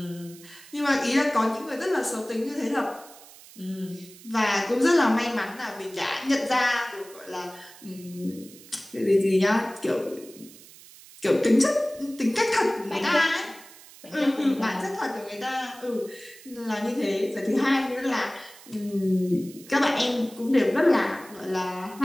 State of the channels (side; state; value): right; noise; hiss, 20 dB below the sound